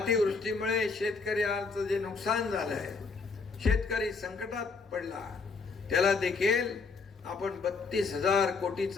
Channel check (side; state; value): right; quieter; 4.5 dB